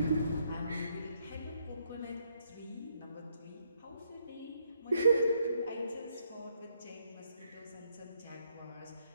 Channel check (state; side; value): inverted; both; correlation -0.73